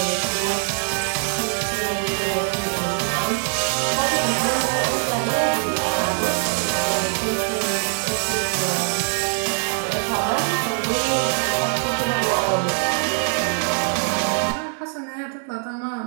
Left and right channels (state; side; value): silent; left; 56 dB below the other